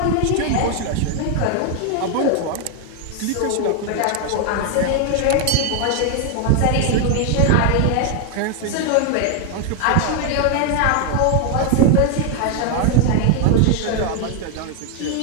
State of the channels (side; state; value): both; different; correlation 0.01